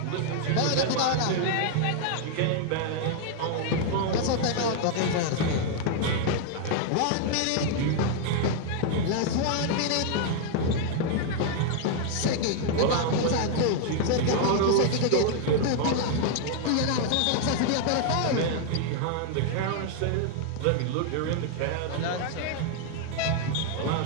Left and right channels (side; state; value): both; different; correlation 0.00